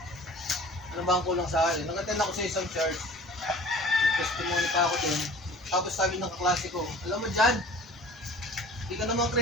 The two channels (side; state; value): both; normal; correlation 0.45